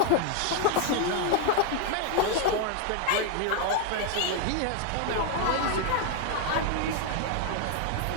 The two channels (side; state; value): both; different; correlation 0.00